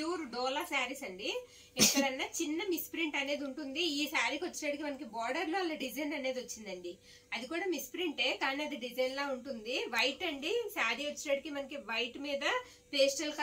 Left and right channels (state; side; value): identical; both; correlation 1.00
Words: డోలా శారీస్ అండి. ఎక్కడన్నా చిన్న మిస్ప్రింట్ అనేది ఉంటుంది. ఈ శారీకి వచ్చేటప్పటికి మనకి బార్డర్ లో అలా డిజైన్ అనేది వచ్చిందండి. అది కూడా మిస్ప్రింటే, కానీ అది డిజైన్ లా ఉంటుంది. వైట్ అండి శారీ వచ్చేటప్పటికి మనకి వైట్ మీద పేస్టల్